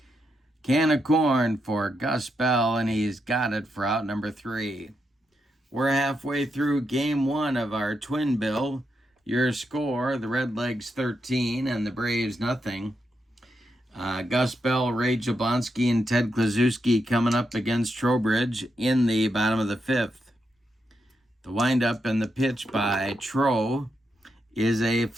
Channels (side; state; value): both; normal; correlation 0.83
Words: Can of corn for Gus Bell, and he's got it for out number 3. We're halfway through game 1 of our twin bill. Your score, the Redlegs 13 and the Braves nothing. Gus Bell, Ray Jablonski, and Ted Kluszewski coming up against Trowbridge in the bottom of the 5th. The windup and the pitch by Tro is a